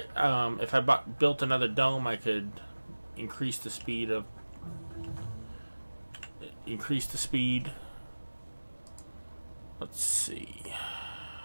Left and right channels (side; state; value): both; inverted; correlation -1.00